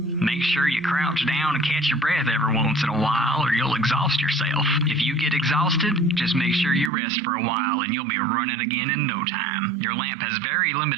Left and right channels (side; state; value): left; drops out; at 6.9 s